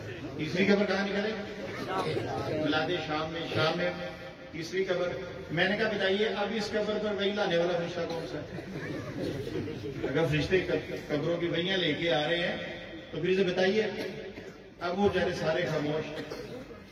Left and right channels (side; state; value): both; identical; correlation 1.00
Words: تیسری قبر کہاں نکلے؟ بلاد شام میں تیسری قبر۔ میں نے کہا بتائیے اب اس قبر پر وہی لانے والا فرشتہ کون سا ہے؟ اگر فرشتے قبروں کی وہیاں لے کے آ رہے ہیں تو پھر اسے بتائیے۔ اب وہ جانے سارے خاموش،